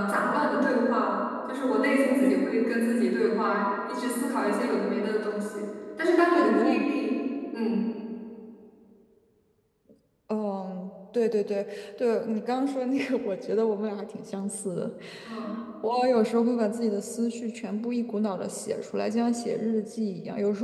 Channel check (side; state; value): both; identical; correlation 1.00